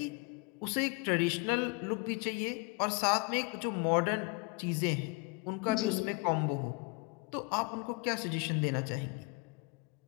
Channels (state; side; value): quieter; right; 27.8 dB